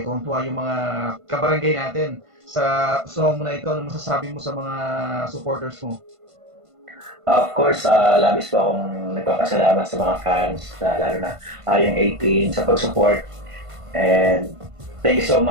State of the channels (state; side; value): late; left; 1.5 ms